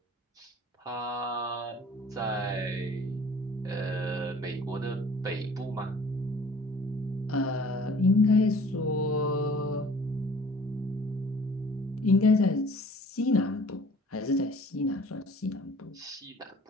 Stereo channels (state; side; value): normal; both; correlation 0.50